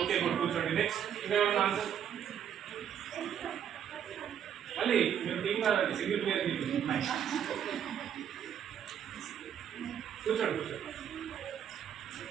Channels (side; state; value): left; quieter; 9.0 dB